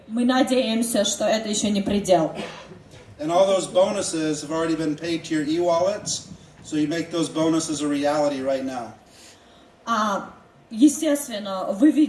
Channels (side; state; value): both; identical; correlation 1.00